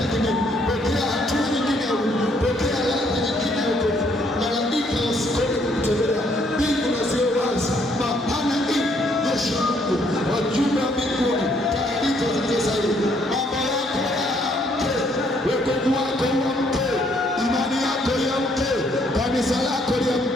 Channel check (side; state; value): both; normal; correlation 0.68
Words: kidogo, pokea hatua nyingine ya Mungu, pokea ladha nyingine ya Mungu. Malaika wasikome kukutembelea, mbingu na ziwe wazi, mapana hii jeshi la Mungu, wajumbe wa mbinguni, taarifa zilizosahihi. Mambo yako yaamke, wokovu wako uamke, imani yako iamke, kanisa lako